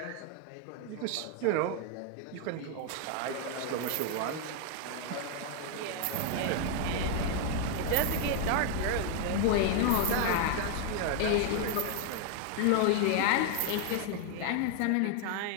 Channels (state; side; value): different; both; correlation 0.00